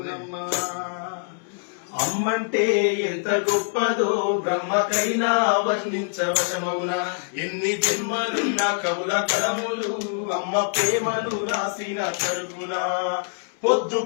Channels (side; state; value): right; silent; 62 dB below the other